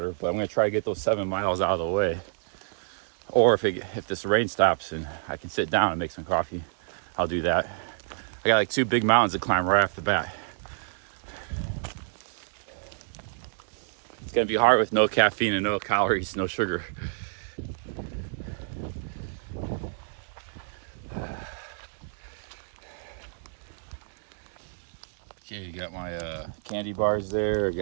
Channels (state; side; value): silent; left; digital silence